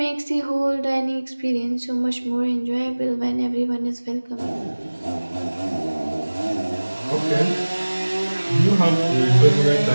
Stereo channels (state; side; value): inverted; both; correlation -1.00